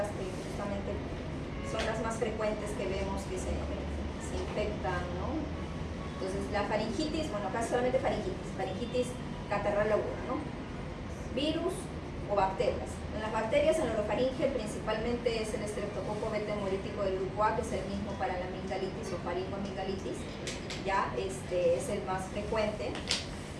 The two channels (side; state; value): both; identical; correlation 1.00